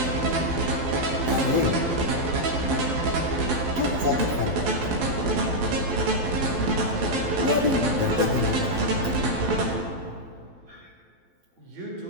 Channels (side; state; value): left; late; 12 ms